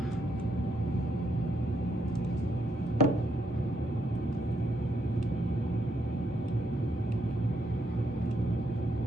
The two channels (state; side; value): normal; both; correlation 0.77